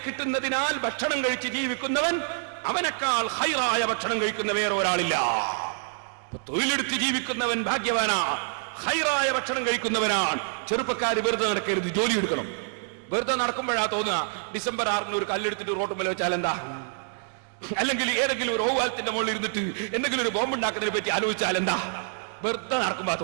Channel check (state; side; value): silent; left; digital silence